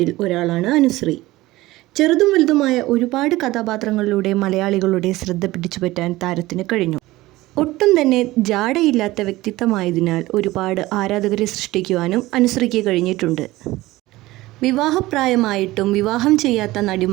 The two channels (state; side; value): quieter; left; 18.3 dB